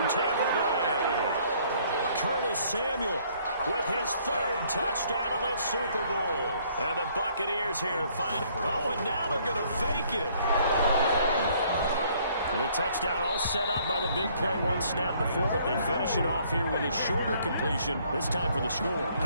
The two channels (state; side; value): inverted; both; correlation -0.63